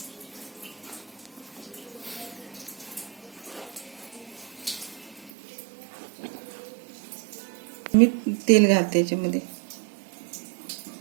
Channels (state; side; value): drops out; left; at 5.3 s